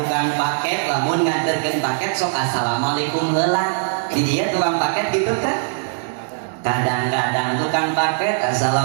paket lamun nganterkeun paket sok assalamualaikum heula di dieu tukang paket gitu teh kadang-kadang tukang paket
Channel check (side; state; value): left; silent; digital silence